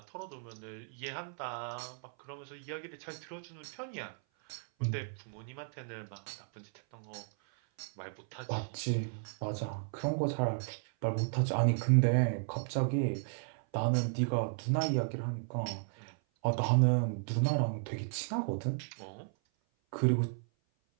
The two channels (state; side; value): silent; left; 55 dB below the other